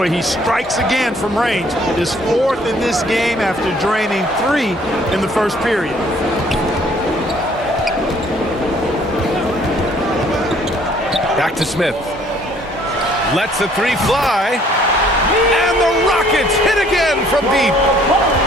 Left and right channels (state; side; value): normal; both; correlation 0.60